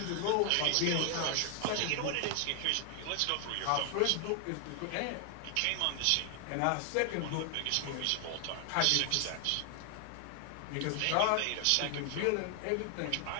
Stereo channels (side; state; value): both; different; correlation 0.00